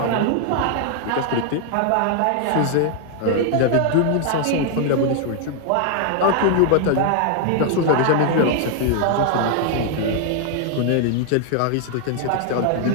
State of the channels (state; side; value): different; both; correlation 0.00